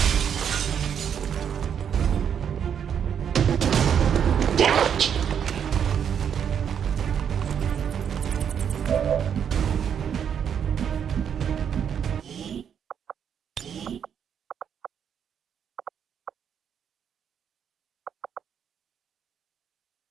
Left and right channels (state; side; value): quieter; left; 8.1 dB